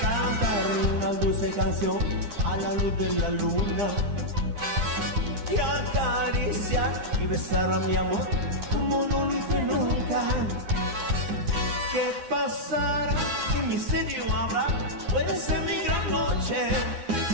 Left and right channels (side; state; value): left; late; 9.8 ms